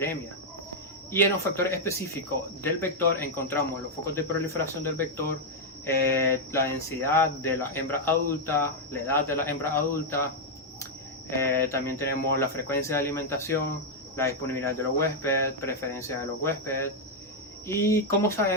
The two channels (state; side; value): normal; both; correlation -0.01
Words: Y en los factores específicos del vector encontramos los focos de proliferación del vector, la densidad de la hembra adulta, la edad de la hembra adulta, también tenemos la frecuencia de alimentación, la disponibilidad de los huéspedes, preferencia de los huéspedes. Y como